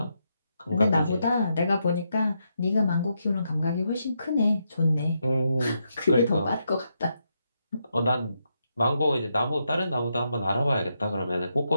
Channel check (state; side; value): inverted; both; correlation -0.81